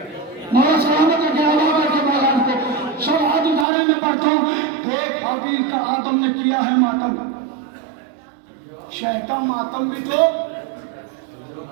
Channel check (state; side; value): drops out; left; at 3.7 s